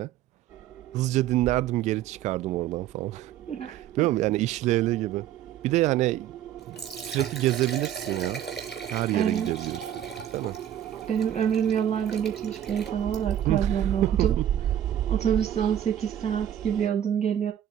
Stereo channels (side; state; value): left; quieter; 11.0 dB